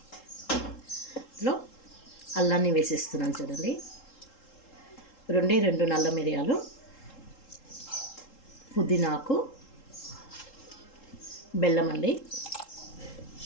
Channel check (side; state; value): right; late; 3.7 ms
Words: ఇందులో అల్లాన్ని వేసేస్తున్నాను చూడండి. రెండు నల్ల మిరియాలు, పుదీనాకు, బెల్లం అండి.